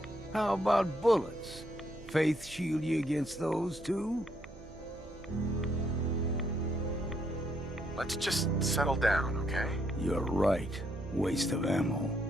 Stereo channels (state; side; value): noise; right; hum, 18 dB below the sound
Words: How about bullets? Faith shield you against those too? Let's just settle down, okay? You're right. Waste of ammo.